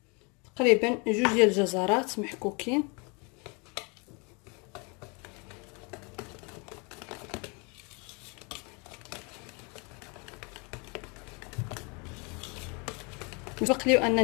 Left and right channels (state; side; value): quieter; right; 31.6 dB